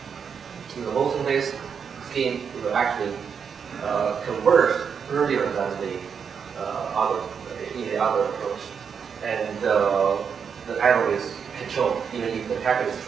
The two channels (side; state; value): left; quieter; 6.7 dB